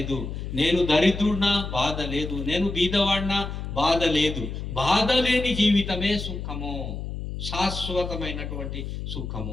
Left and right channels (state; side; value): noise; left; hum, 6 dB below the sound